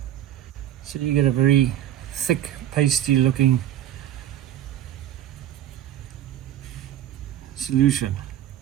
so you get a very thick pasty looking solution.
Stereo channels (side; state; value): left; quieter; 11.7 dB